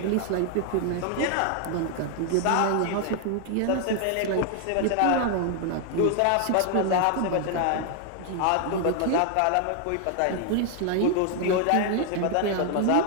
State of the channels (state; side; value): different; both; correlation 0.00